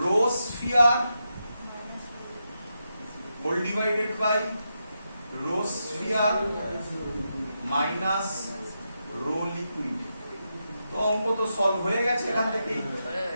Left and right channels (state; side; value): inverted; both; correlation -0.86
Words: rho sphere whole divided by rho sphere minus rho liquid. তো অঙ্ক তো সলভ হয়ে গেছে এখান থেকেই।